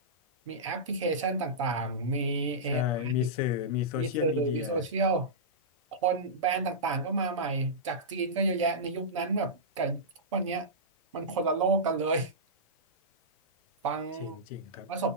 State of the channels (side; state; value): both; normal; correlation -0.15